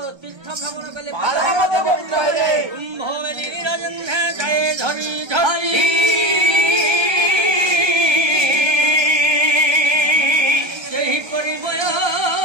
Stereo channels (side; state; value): left; late; 1.3 ms